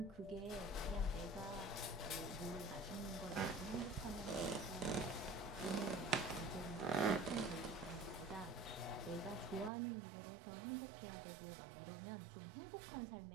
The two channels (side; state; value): left; drops out; at 9.7 s